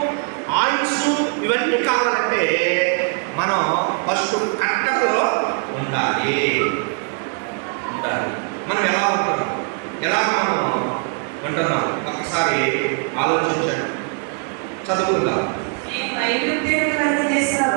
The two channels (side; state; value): left; quieter; 38.8 dB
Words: ఆయుస్సు ఇవన్నీ కావాలంటే మనం ఫస్ట్ కట్టడలో ఉండాలి. మనం ఎలా ఉంటున్నాం, ఎలాగ మనం ఉంటున్నాం ఒక్కసారి ఆలోచించండి. చదువుకుందాం.